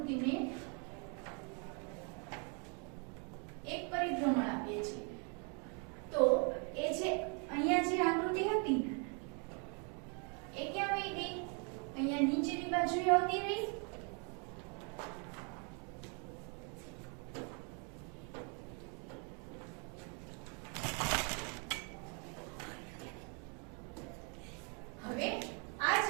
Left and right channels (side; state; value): left; quieter; 36.8 dB